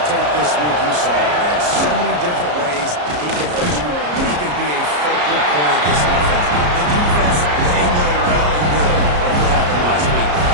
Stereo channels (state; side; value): late; left; 34 ms